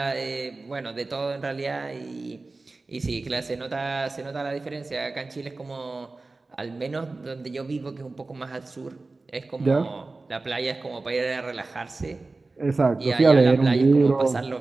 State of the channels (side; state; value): left; quieter; 3.5 dB